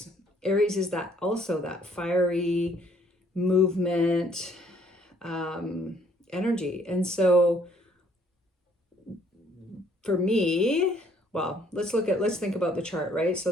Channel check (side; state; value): both; normal; correlation 0.63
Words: Aries is that fiery movement energy. And so for me, well, let's think about the chart, right? So